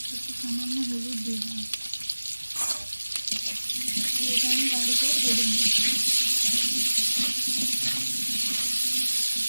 সামান্য হলুদ দিয়ে দিলাম। এটা আমি গাঢ় করে ভেজে নেব।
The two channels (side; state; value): both; inverted; correlation -1.00